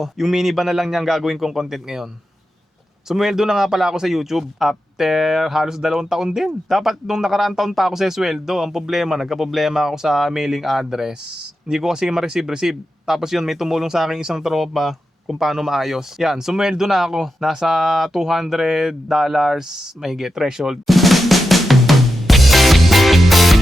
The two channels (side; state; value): both; normal; correlation 0.89